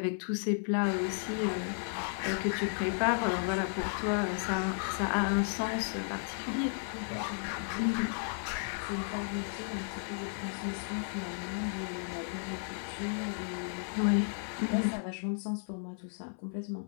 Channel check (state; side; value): silent; right; 55 dB below the other